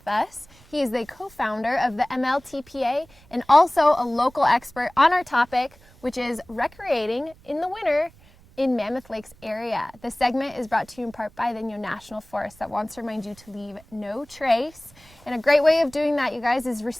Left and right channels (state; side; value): noise; right; rumble, 26 dB below the sound